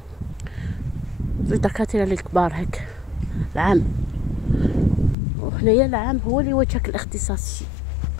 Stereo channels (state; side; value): drops out; right; at 5.2 s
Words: 2 دكاتره للكبار هيك العام. وهنايا العام هو اللي وجهك الاختصاص.